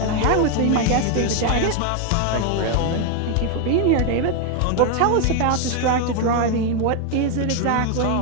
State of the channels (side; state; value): both; different; correlation 0.01